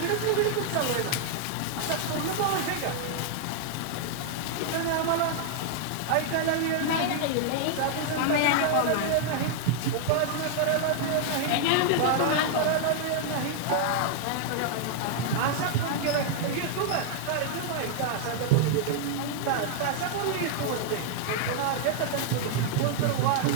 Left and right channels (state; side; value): different; both; correlation 0.00